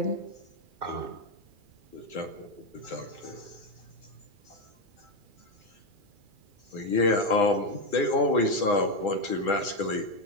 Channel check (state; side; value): late; left; 2.4 ms